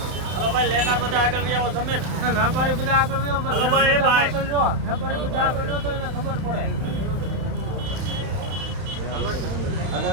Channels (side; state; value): left; late; 31 ms